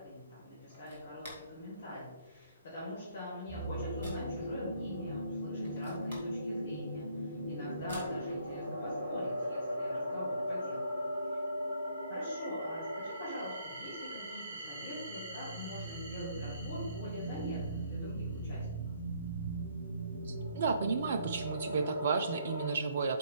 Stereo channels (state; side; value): inverted; both; correlation -0.66